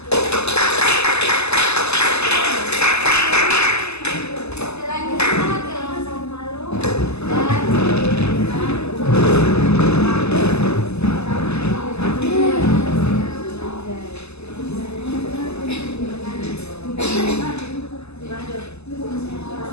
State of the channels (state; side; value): late; right; 0.80 ms